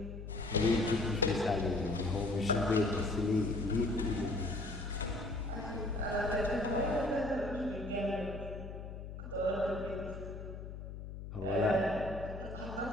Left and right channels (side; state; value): left; noise; hum, 9 dB below the sound